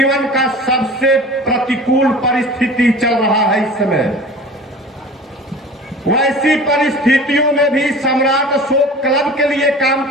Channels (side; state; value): both; normal; correlation 0.40